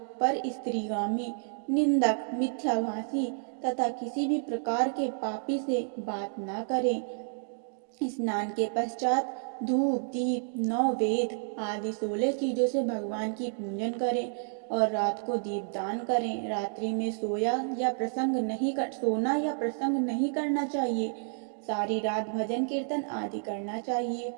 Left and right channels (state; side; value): silent; left; digital silence